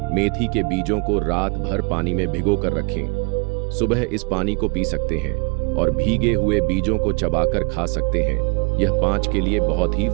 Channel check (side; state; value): left; quieter; 32.2 dB